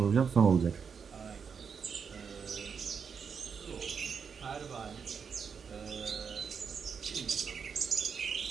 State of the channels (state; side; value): quieter; left; 6.3 dB